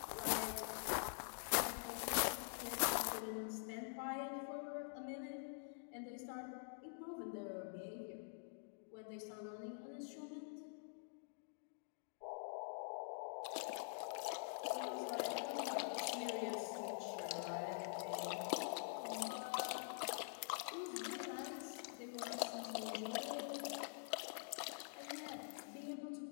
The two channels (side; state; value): right; silent; digital silence